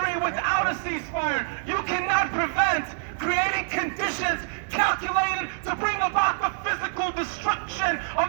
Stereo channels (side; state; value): left; silent; digital silence